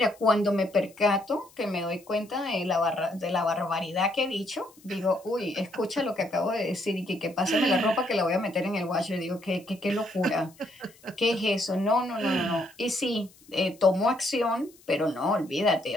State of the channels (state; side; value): noise; left; hiss, 27 dB below the sound